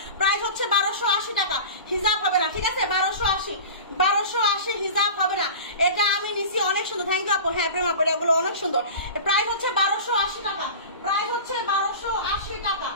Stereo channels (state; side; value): inverted; both; correlation -0.33